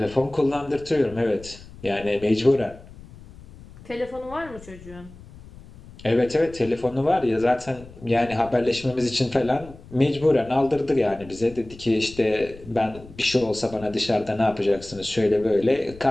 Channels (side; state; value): left; noise; rumble, 19 dB below the sound